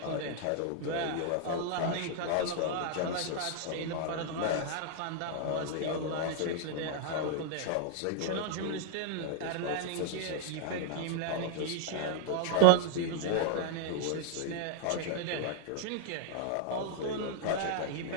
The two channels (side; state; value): both; different; correlation 0.00